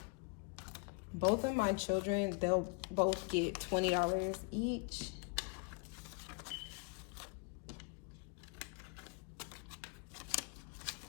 Both of my children, they'll both get $20 each.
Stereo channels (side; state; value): right; quieter; 33.1 dB